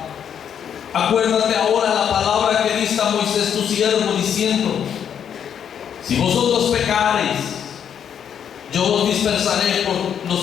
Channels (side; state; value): right; quieter; 8.5 dB